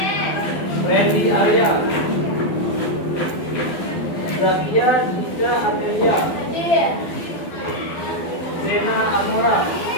Freddy Arya, Zakia Dika Adelia, Zena Amora.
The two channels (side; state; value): right; late; 12 ms